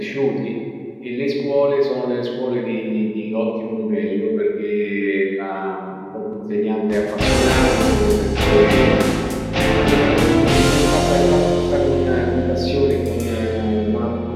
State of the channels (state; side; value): identical; both; correlation 1.00